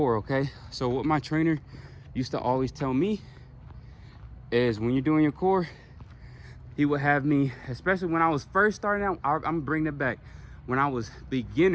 Okay, so what my trainer used to always tell me is when you're doing your core, he would have me, especially when I was first starting out, I'm bringing it back. When I was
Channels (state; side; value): identical; both; correlation 1.00